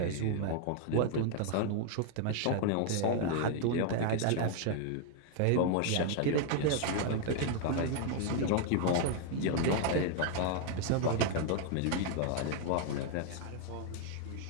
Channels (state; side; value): different; both; correlation 0.00